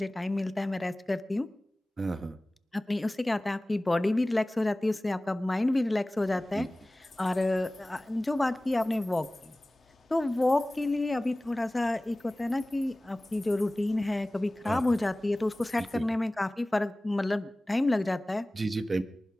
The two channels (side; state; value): both; normal; correlation 0.98